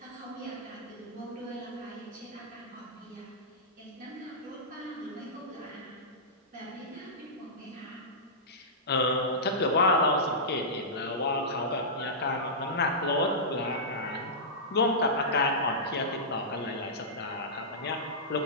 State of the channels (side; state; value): both; normal; correlation -0.15